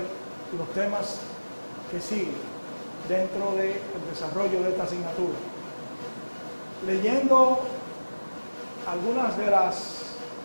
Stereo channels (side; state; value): both; inverted; correlation -1.00